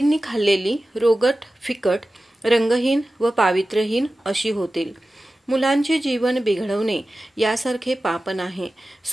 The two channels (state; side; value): normal; both; correlation 0.95